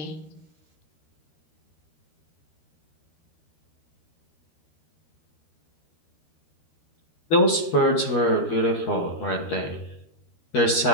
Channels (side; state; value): right; late; 12 ms